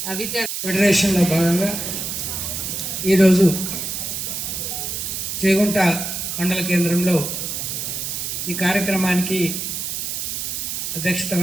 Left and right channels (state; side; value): noise; right; hiss, 4 dB below the sound